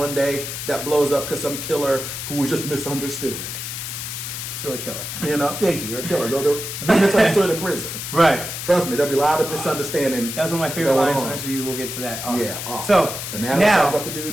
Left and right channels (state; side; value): noise; left; hiss, 6 dB below the sound